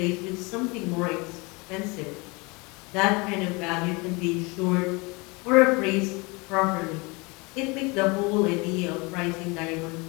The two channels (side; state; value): right; quieter; 27.2 dB